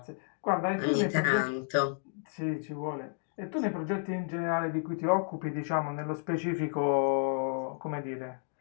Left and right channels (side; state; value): right; silent; 57 dB below the other